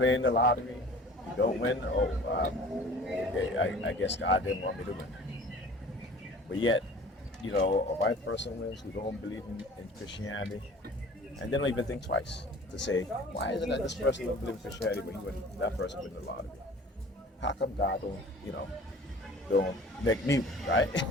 the lottery, you don't win. I guess God didn't want me to win. But yet, a white person wins who don't believe in Christianity, and they don't even think twice to say, why is it that this person don't believe in Christianity but that person win the lottery? How come God don't make me, right?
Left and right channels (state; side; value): normal; both; correlation 0.45